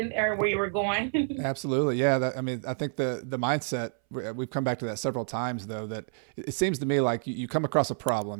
or where you were going. Absolutely. Yeah. I think the mindset, we've come back to that several times though, that it seems to me like you come across a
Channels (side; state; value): left; silent; 59 dB below the other